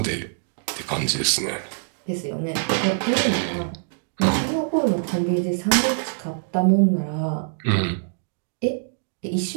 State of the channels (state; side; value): silent; left; digital silence